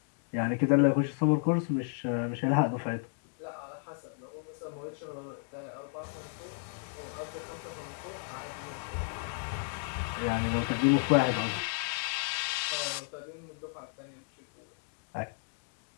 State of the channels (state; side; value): silent; right; digital silence